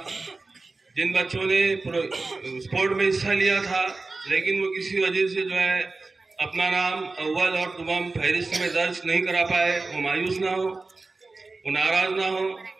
जिन बच्चों ने स्पोर्ट में हिस्सा लिया था लेकिन वो किसी वजह से जो है अपना नाम अव्वल और तमाम फहरिस्त में दर्ज नहीं करा पाए, वो मायूस ना हो, वो नाराज़ ना हो,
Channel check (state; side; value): quieter; left; 3.6 dB